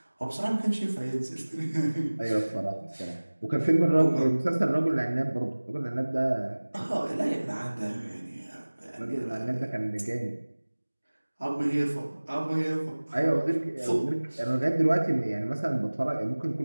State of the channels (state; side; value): inverted; both; correlation -1.00